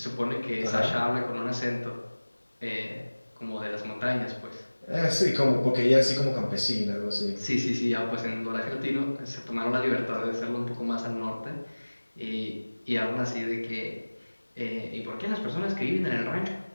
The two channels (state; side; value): inverted; both; correlation -1.00